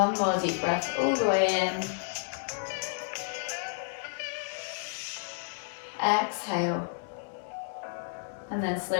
more deep breath all the way in. Exhale. And then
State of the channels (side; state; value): right; silent; 57 dB below the other